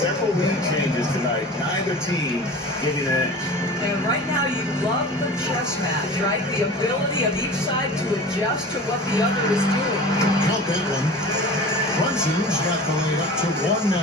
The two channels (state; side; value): normal; both; correlation 0.37